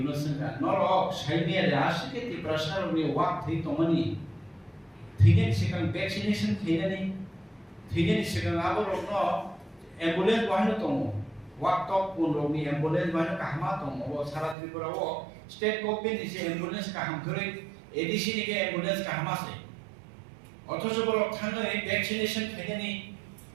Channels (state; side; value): drops out; left; at 14.6 s